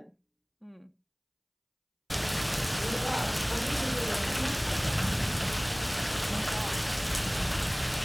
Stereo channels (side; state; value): both; identical; correlation 1.00